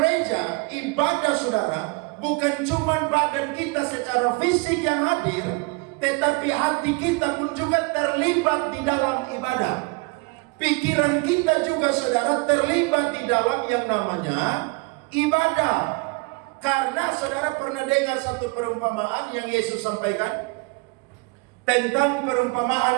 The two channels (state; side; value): quieter; left; 27.4 dB